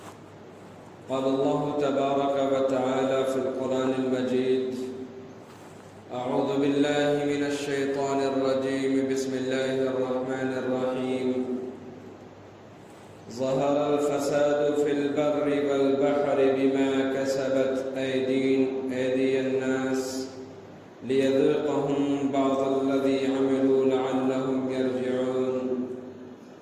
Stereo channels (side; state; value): both; identical; correlation 1.00